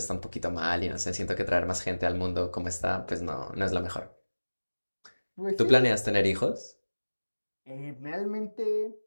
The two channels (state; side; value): inverted; both; correlation -1.00